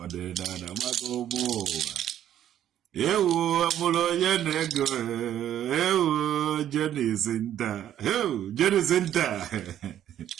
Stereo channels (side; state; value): left; quieter; 11.1 dB